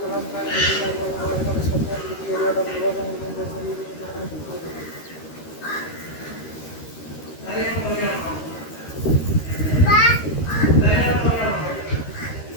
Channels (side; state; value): right; late; 13 ms